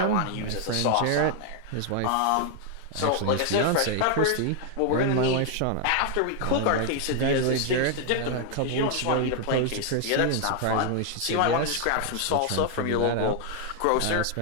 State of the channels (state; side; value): different; both; correlation 0.00